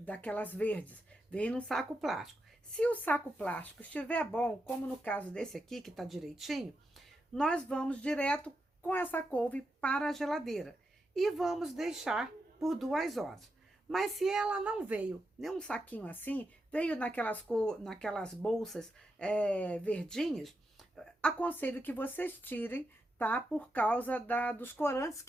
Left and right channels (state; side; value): normal; both; correlation 0.85